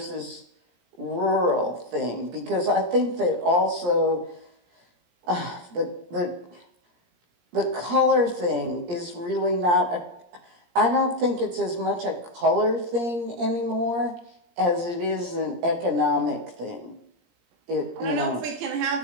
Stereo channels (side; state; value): left; late; 17 ms